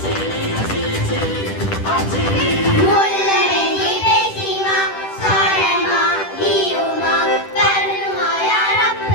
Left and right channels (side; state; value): right; late; 10 ms